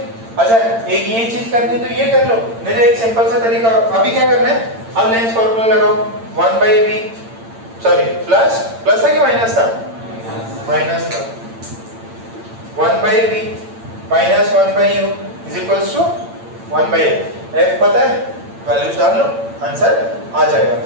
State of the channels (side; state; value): left; late; 8.8 ms